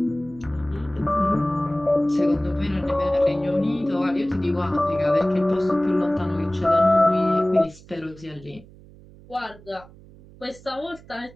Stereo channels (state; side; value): noise; right; hum, 22 dB below the sound